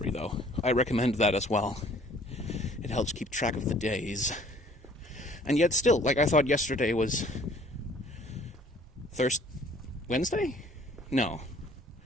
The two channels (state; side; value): normal; both; correlation 0.56